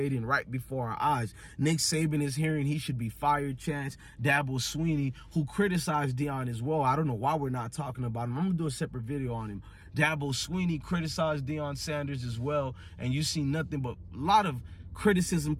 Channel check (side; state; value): both; identical; correlation 1.00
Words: right before our eyes. Nick Saban is hearing he should be fired. Chance Dabo Sweeney, who criticized Deion as well. I don't know why we're not talking about him. I'm gonna do a separate video on him. Dabo Sweeney criticized Deion Sanders as well, and you see nothing but a lot of criticism